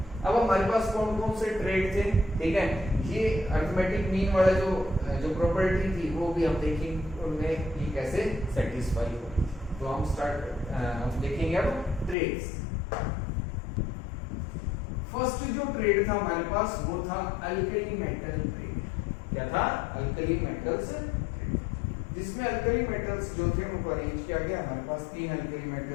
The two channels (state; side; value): drops out; right; at 12.2 s